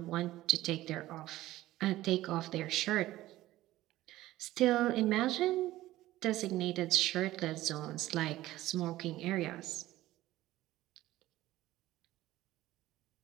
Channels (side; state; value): left; quieter; 15.9 dB